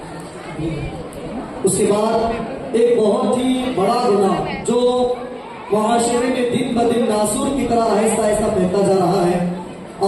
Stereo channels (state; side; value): identical; both; correlation 1.00